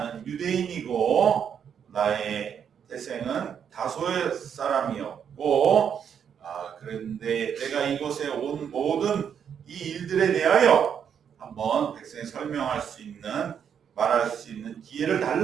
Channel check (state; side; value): quieter; left; 7.9 dB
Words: 유대인이고 나의 태생은 다소의 사람이었고 그런데 내가 이곳에 온 모든 이 일들에 대하여 한번 백성에 설명할 수 있는 말할 수 있는 기회를